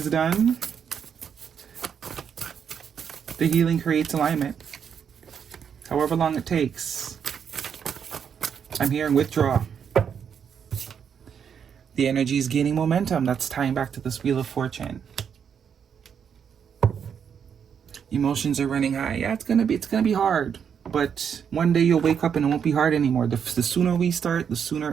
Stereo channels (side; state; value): left; quieter; 7.5 dB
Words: done, the healing creates alignment. However long it takes. I'm hearing withdraw. The energy is gaining momentum. That's tying back to this Wheel of Fortune. Emotions are running high. Yeah, it's gonna be hard. But one day you'll wake up and it won't be hard anymore. The sooner we start, the sooner